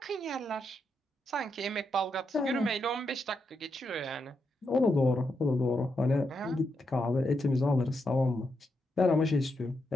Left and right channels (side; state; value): both; normal; correlation 0.83